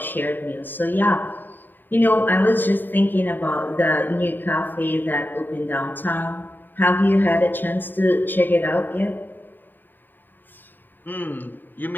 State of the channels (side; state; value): right; late; 0.091 ms